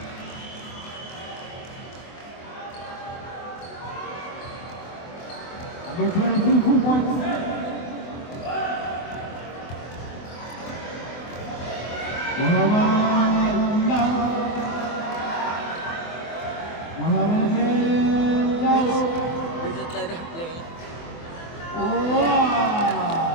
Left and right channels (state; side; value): late; right; 24 ms